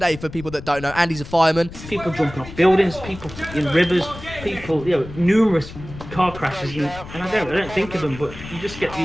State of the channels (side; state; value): left; noise; rumble, 14 dB below the sound